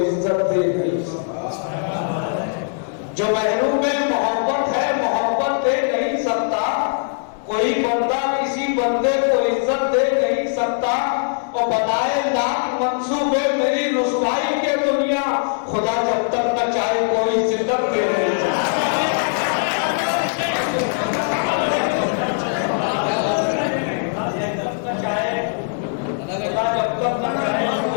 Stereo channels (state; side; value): silent; right; 64 dB below the other